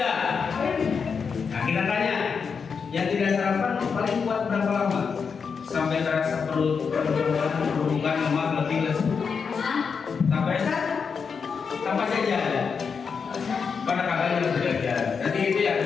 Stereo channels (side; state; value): right; quieter; 5.8 dB